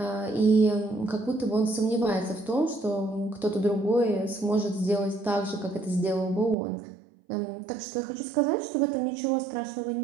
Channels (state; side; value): drops out; left; at 6.6 s